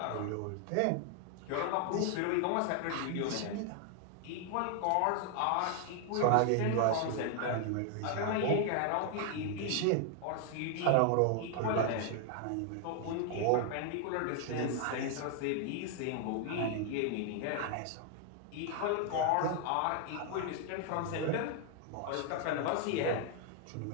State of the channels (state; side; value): different; both; correlation 0.00